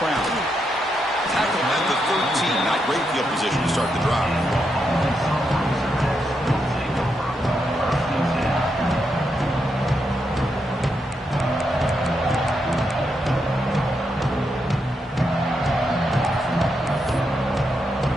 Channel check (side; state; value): both; normal; correlation 0.82